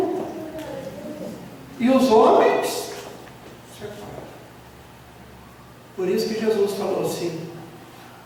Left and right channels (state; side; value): identical; both; correlation 1.00